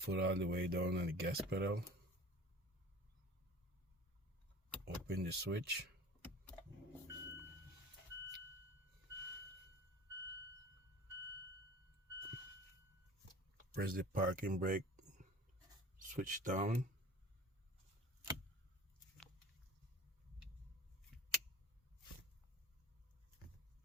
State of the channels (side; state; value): both; normal; correlation 0.42